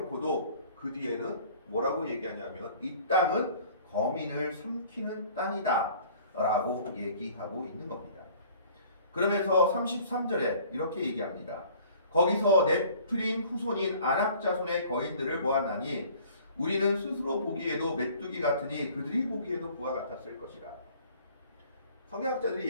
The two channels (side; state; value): both; inverted; correlation -0.51